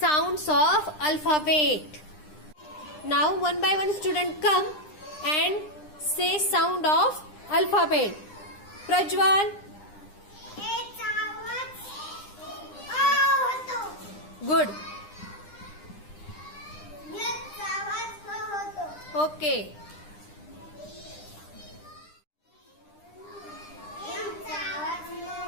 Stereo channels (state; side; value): late; right; 9.9 ms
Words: of alphabet. Now one by one student come and say sound of alphabet. Prajwal. Good. Okay.